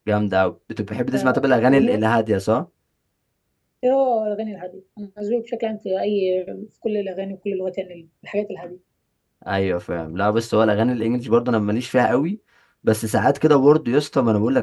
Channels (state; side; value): identical; both; correlation 1.00